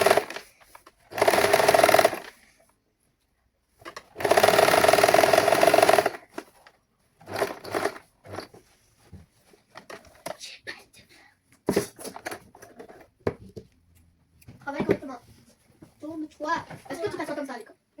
Toi, est-ce que tu t'assois comme ça à l'école?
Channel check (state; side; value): identical; both; correlation 1.00